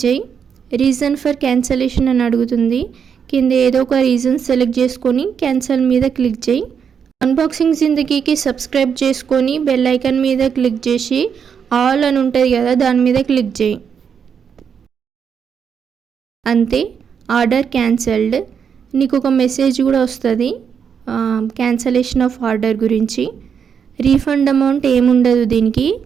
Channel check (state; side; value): quieter; left; 7.1 dB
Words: చేయి. రీజన్ ఫర్ క్యాన్సిలేషన్ అని అడుగుతుంది. కింద ఏదో ఒక రీజన్ సెలెక్ట్ చేసుకొని క్యాన్సిల్ మీద క్లిక్ చేయి. అన్బాక్సింగ్ జిందగీకి సబ్స్క్రైబ్ చేసుకొని బెల్ ఐకాన్ మీద క్లిక్ చేసి ఆల్ అని ఉంటుంది కదా, దాని మీద క్లిక్ చేయి. అంతే, ఆర్డర్ క్యాన్సిల్డ్. నీకు ఒక మెసేజ్ కూడా వస్తుంది క్యాన్సలేషన్ ఆఫ్ ఆర్డర్ గురించి. రీఫండ్ అమౌంట్ ఏముండదు దీనికి.